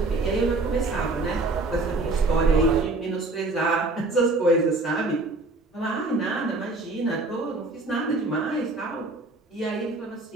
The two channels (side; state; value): left; quieter; 3.2 dB